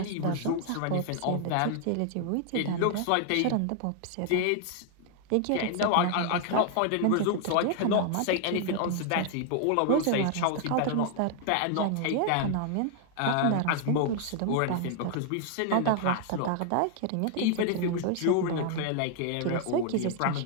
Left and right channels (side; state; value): both; different; correlation 0.00